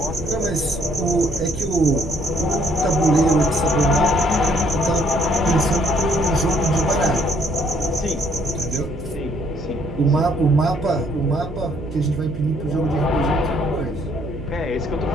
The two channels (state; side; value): noise; right; hum, 11 dB below the sound